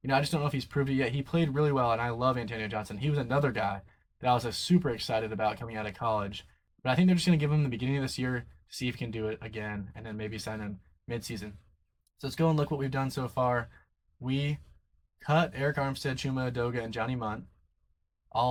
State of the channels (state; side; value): identical; both; correlation 1.00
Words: I just don't know if he's proved it yet. He played really well, and I love Antonio Johnson. He was another guy that I was super excited about coming out of college. But I think they're just going to give him the beginning of this year to see if he can do it again, and then maybe sign him mid-season. So let's go and look what we've done so far. We cut Eric Armstead, Chuma Edoga, and Johnny Munt.